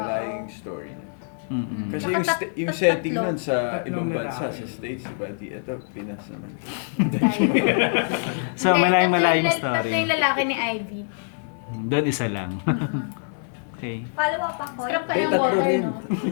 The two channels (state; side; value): silent; right; 62 dB below the other